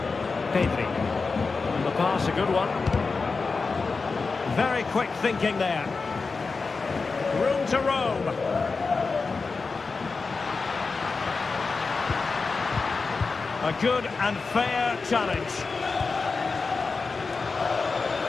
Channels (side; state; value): right; quieter; 4.4 dB